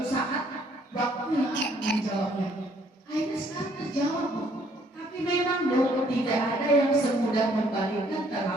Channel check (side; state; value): both; normal; correlation 0.64